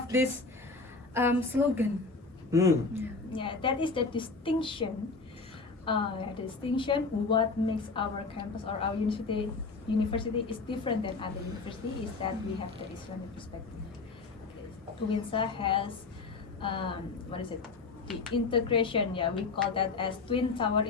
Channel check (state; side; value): quieter; right; 4.1 dB